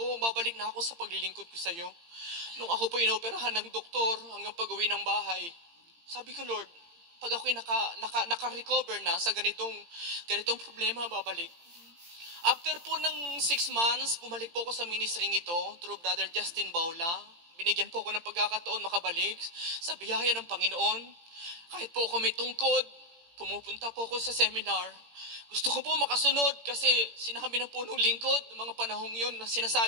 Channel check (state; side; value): late; left; 18 ms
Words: Babalik na ako sa paglilingkod ko sa iyo. Nung ako po inoperahan ng doktor hanggang pag-uwi ng bahay, sabi ko, Lord, pag ako'y naka-recover na sa ganitong problema, babalik. After po ng 6 months, bumalik po ako sa ministry ito through Brother Justin Baula. Binigyan po ako ng pagkakataon makabalik sa biyaya ng Panginoon. Kahit po ako may tungkod, pumupunta po ako sa seminar. Gusto ko po makasunod kasi sinabi ng punong lingkod ng mga panahong yun na